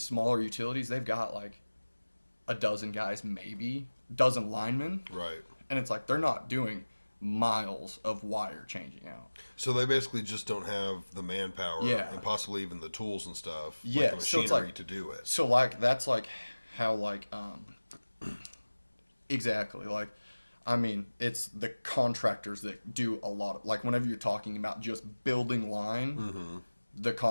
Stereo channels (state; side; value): inverted; both; correlation -1.00